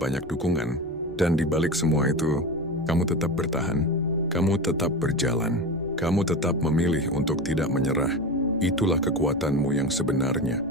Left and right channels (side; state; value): right; noise; rumble, 22 dB below the sound